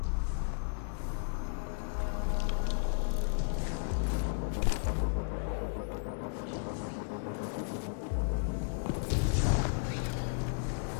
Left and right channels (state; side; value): silent; right; digital silence